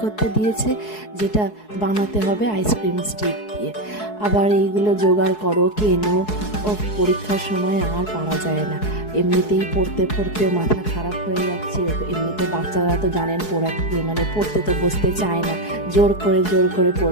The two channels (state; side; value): late; right; 4.7 ms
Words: করতে দিয়েছে, যেটা বানাতে হবে আইসক্রিম স্টিক দিয়ে। আবার এইগুলো জোগাড় করো, কেনো। উফ! পরীক্ষার সময় আর পারা যায় না। এমনিতেই পড়তে, পড়তে মাথা খারাপ হয়ে যাচ্ছে। এমনিতে বাচ্চারা তো জানেন পড়তে তো বসতে চায় না। জোর করে